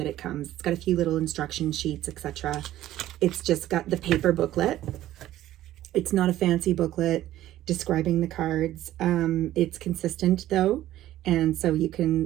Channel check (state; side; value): quieter; left; 13.9 dB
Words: it comes. It's got a few little instruction sheets, etc. It's just got the paper booklet. It's not a fancy booklet describing the cards. It's consistent though, and so you